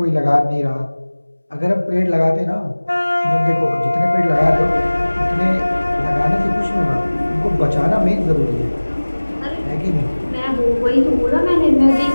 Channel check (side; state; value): both; inverted; correlation -1.00